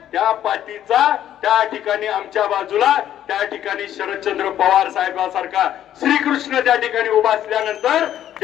त्या पाठीचा त्या ठिकाणी आमच्या बाजूला त्या ठिकाणी शरदचंद्र पवार साहेबांसारखा श्रीकृष्ण त्या ठिकाणी उभा असल्यानंतर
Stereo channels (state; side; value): quieter; right; 11.3 dB